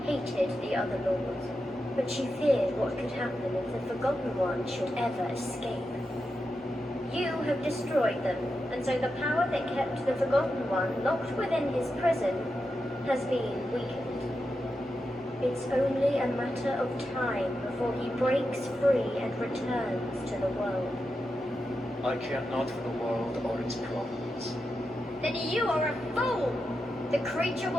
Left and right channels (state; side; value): normal; both; correlation 0.88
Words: hated the other lords, but she feared what could happen if the Forgotten One should ever escape. You have destroyed them, and so the power that kept the Forgotten One locked within his prison has been weakened. It's only a matter of time before he breaks free and returns to the world. I care not for the world or its problems. Then you are a fool! The creature